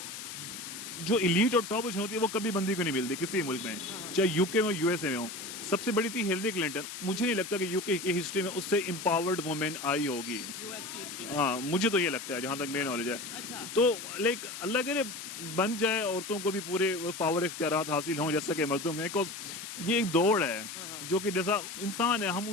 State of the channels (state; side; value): noise; left; hiss, 9 dB below the sound